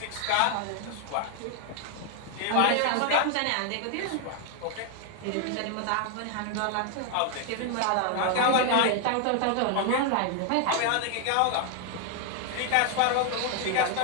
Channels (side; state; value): both; different; correlation 0.00